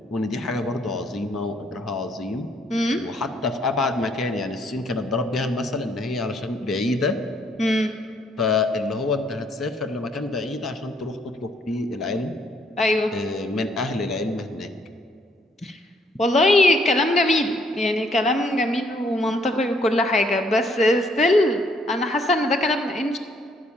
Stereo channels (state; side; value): normal; both; correlation 0.67